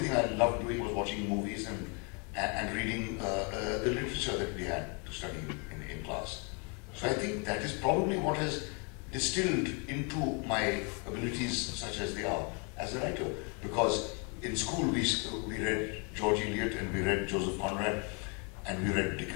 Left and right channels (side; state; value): right; quieter; 34.8 dB